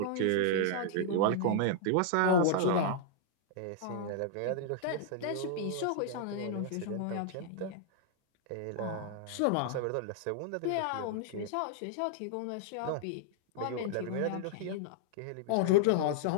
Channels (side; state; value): both; different; correlation -0.01